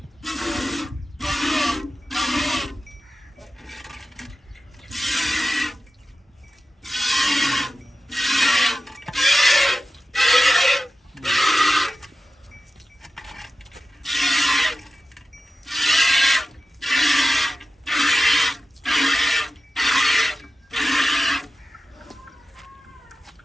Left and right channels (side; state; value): both; normal; correlation 0.93